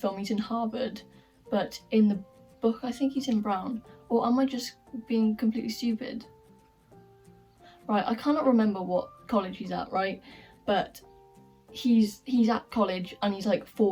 he's in Harvard, but in the book I think he's in Brown. Or am I just being completely stupid? Right, I cannot remember what college he's at, right? But he's at college and he's like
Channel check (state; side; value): identical; both; correlation 1.00